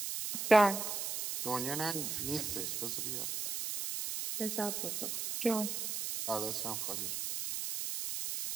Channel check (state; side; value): noise; right; hiss, 3 dB below the sound